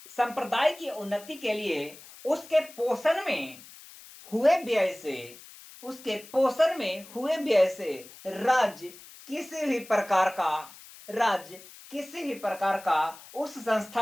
संप्रदाय की उन्नति के लिए उसके पोषण में हुए व्यय से राज्य किसी भी प्रकार का उस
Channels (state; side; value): noise; left; hiss, 19 dB below the sound